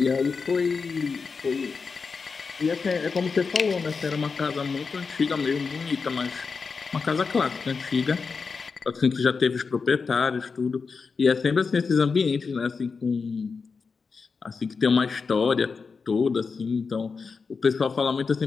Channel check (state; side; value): quieter; right; 5.0 dB